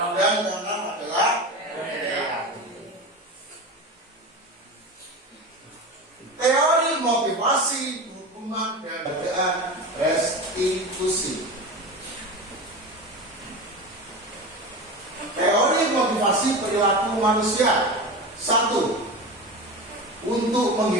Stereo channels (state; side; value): normal; both; correlation 0.26